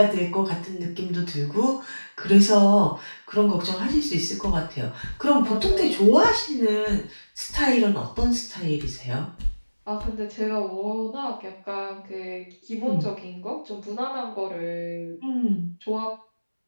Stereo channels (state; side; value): inverted; both; correlation -1.00